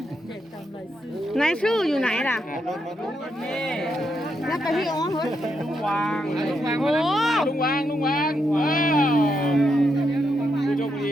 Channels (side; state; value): both; normal; correlation 0.81